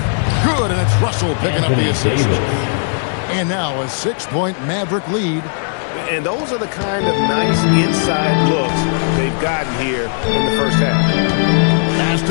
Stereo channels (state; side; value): silent; right; digital silence